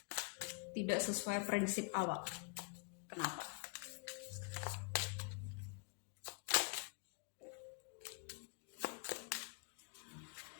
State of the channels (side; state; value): right; quieter; 34.4 dB